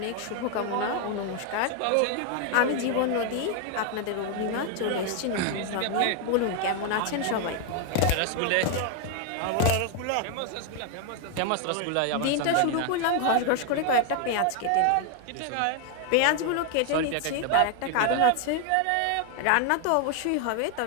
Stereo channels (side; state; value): both; different; correlation 0.00